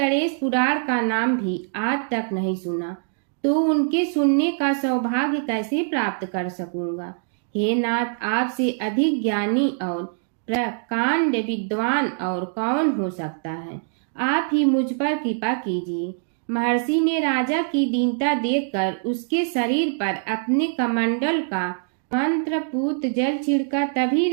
पुराण का नाम भी आज तक नहीं सुना, तो उनके सुनने का सौभाग्य कैसे प्राप्त कर सकूंगा। हे नाथ, आपसे अधिक ज्ञानी और प्रकांड विद्वान और कौन हो सकता है। आप ही मुझ पर कृपा कीजिए। महर्षि ने राजा की दीनता देखकर उसके शरीर पर अपने कमंडल का मंत्रपूत जल छिड़का। तभी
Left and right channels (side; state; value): left; silent; digital silence